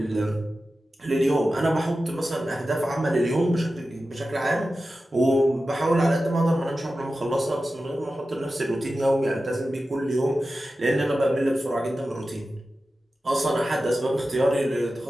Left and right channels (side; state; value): both; normal; correlation 0.93